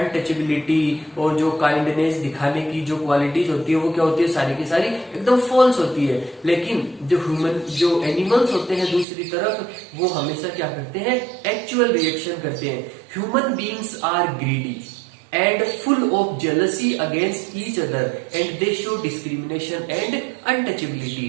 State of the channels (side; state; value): left; drops out; at 9.1 s